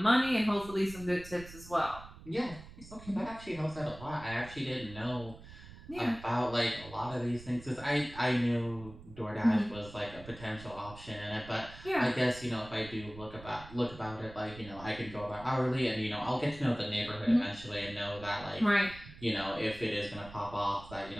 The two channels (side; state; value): right; noise; rumble, 17 dB below the sound